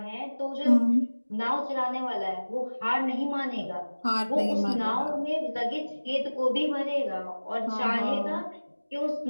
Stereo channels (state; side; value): inverted; both; correlation -1.00